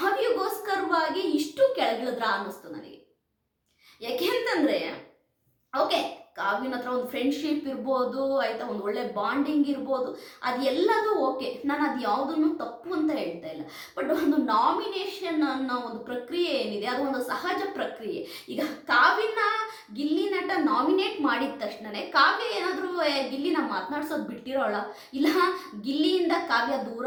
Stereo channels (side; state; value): both; identical; correlation 1.00